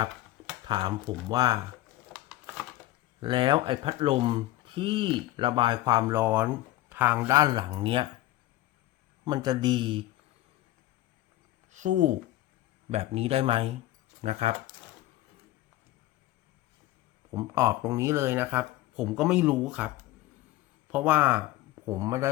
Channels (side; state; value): right; quieter; 16.0 dB